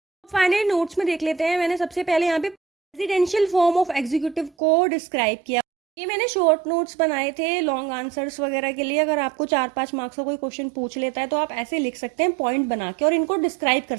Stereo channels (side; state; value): left; drops out; at 4.5 s